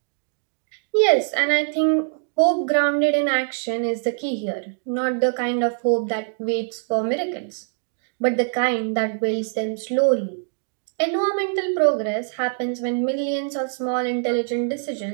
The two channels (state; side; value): silent; left; digital silence